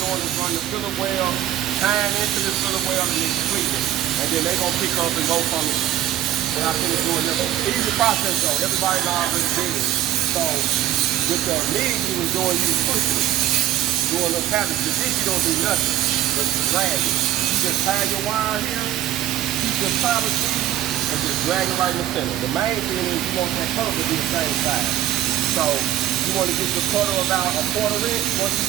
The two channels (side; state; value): left; quieter; 12.6 dB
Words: is run the filler well, tying into this filler well and then tweak it. And then they're gonna pick up and go from it. When I finish doing this. Easy process though. Everybody's already did it. So with the MIG you was doing, you was pushing it. Doing little patterns. With this you don't do nothing but drag it. You just tie your wire here, keep your powder speed, and just drag it right in the center. The main thing is you want that cutter to be the same size. So you want to get your cutter about a 1/4 inch. Once you